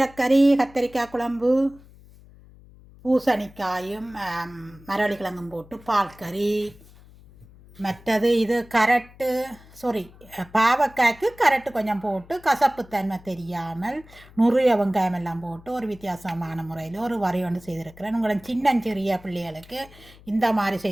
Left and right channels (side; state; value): left; noise; hum, 23 dB below the sound